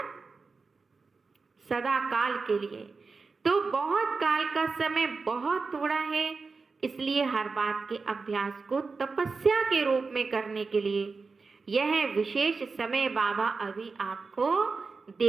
सदा काल के लिए। तो बहुत काल का समय बहुत थोड़ा है, इसलिए हर बात के अभ्यास को तपस्या के रूप में करने के लिए यह विशेष समय बाबा अभी आपको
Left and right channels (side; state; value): left; quieter; 4.4 dB